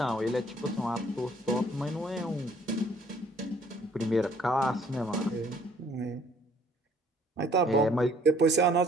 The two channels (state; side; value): normal; both; correlation 0.59